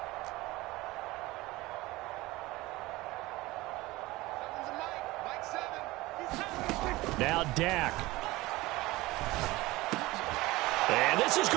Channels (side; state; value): left; quieter; 19.9 dB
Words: Now Dak. And this is